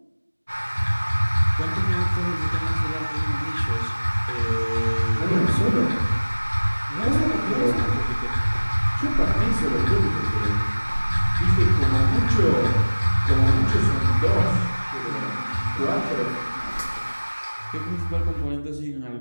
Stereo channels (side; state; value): both; inverted; correlation -1.00